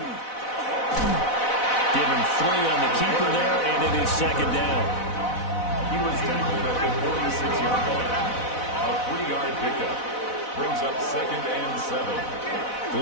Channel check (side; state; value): right; late; 4.0 ms